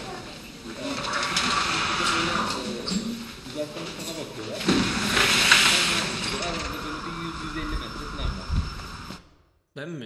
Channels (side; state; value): both; identical; correlation 1.00